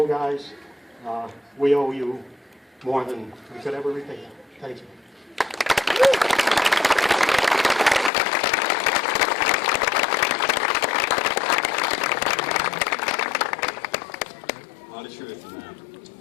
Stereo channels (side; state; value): right; drops out; at 8.1 s